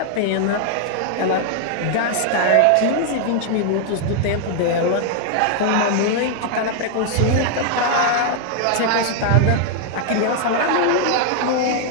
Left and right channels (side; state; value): both; different; correlation 0.00